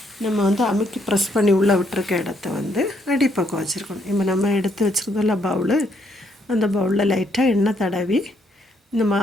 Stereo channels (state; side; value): normal; both; correlation 0.72